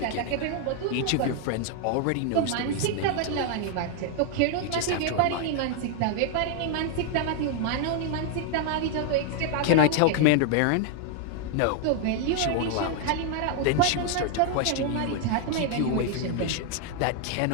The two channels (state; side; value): different; both; correlation 0.00